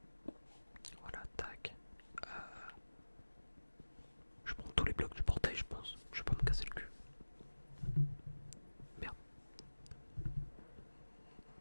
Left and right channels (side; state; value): both; inverted; correlation -1.00